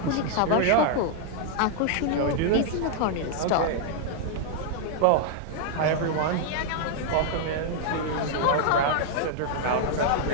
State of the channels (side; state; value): both; different; correlation -0.01